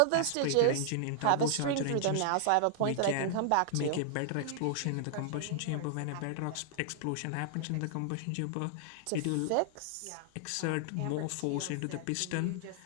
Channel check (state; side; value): different; both; correlation -0.01